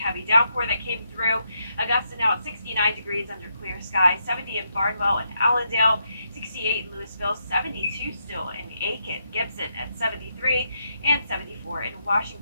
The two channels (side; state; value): both; inverted; correlation -0.80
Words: downpour that came through. Augusta now at 69 degrees under clear skies, 70 in Barnwell and Allendale, 68 in Louisville, 72 still in Aiken, Gibson at 73, and 74 in